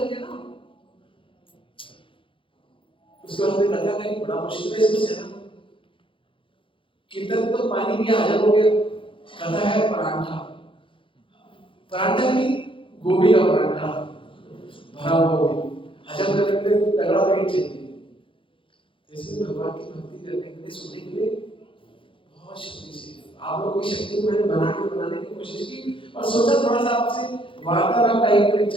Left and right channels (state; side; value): late; right; 0.25 ms